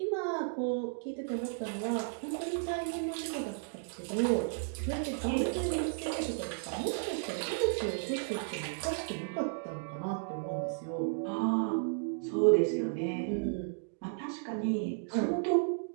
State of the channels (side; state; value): left; silent; digital silence